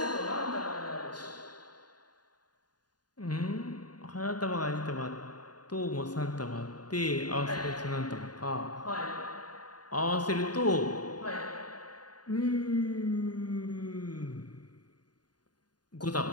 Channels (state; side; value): late; right; 0.69 ms